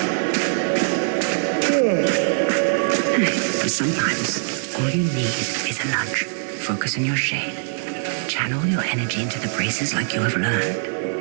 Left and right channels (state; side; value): silent; left; 64 dB below the other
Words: And sometimes, all you need is a nudge. Focus on your shade. Channel your energy into the braces like you have